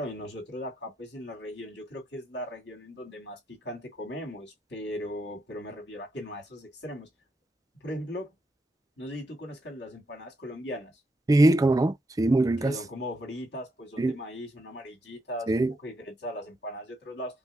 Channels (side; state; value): both; normal; correlation 0.81